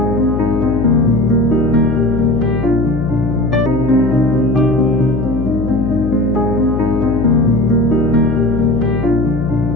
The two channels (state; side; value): noise; left; hum, 5 dB below the sound